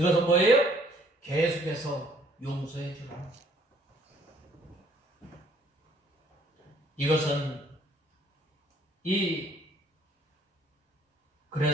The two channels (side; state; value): both; normal; correlation 0.62